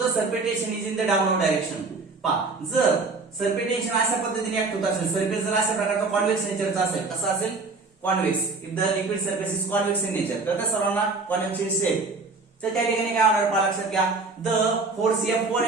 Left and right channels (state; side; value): quieter; left; 3.9 dB